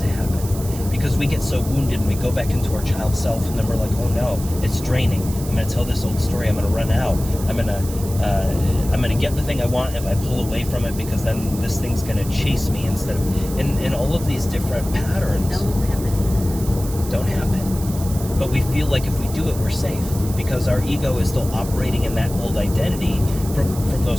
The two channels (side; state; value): right; noise; hiss, 13 dB below the sound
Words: happen. Because we get so wounded and we go back into our child self, and then we're like, oh no, it's draining. I'm going to tell this old story. I'm going to run out. I'm going to get the thing I want if I pull away from it, because then this thing's going to chase me instead of, and all of these different patterns don't happen. But we feel like if we do it, we're safe, because our ego is still operating in that old identity from